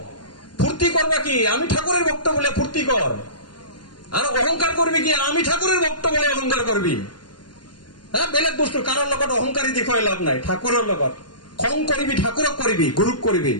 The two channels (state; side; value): late; right; 0.71 ms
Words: ফুর্তি করবা কি আমি ঠাকুরের ভক্ত বলে ফুর্তি কর আর অহংকার করবি কি আমি ঠাকুরের ভক্ত বলে অহংকার করবি বেলেগ বস্তু কারোর লগত অহংকারী দেখুৱাই লাভ নাই ঠাকুৰৰ লগত খং কৰিবি ঠাকুৰক কৰিবি গুৰুক কৰিবি